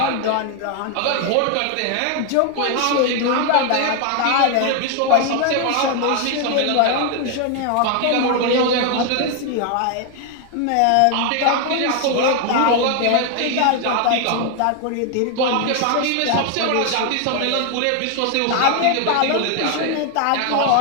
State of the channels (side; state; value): both; different; correlation 0.00